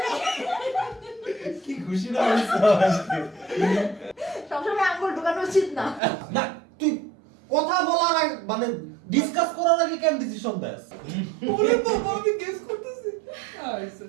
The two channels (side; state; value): left; drops out; at 6.0 s